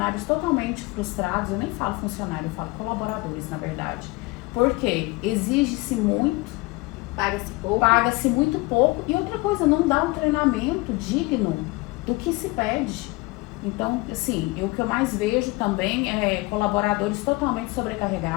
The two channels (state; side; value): quieter; right; 23.0 dB